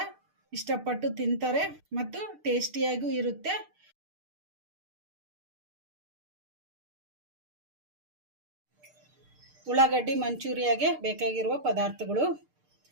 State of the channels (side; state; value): left; late; 6.6 ms